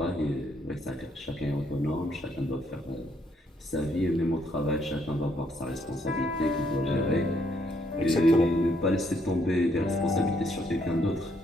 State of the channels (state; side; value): normal; both; correlation 0.71